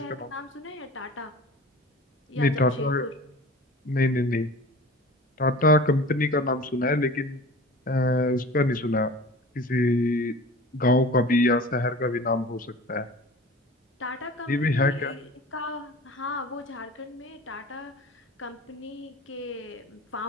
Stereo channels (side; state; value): both; normal; correlation 0.39